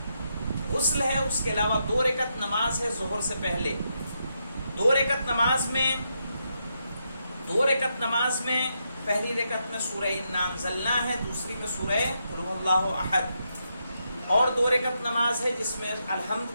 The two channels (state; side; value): inverted; both; correlation -0.82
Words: غسل ہے، اس کے علاوہ 2 رکعت نماز ہے ظہر سے پہلے. 2 رکعت نماز میں پہلی رکعت میں سورہ انا انزلنا ہے، دوسری میں سورہ قل هو اللہ احد. اور 2 رکعت نماز ہے جس میں الحمد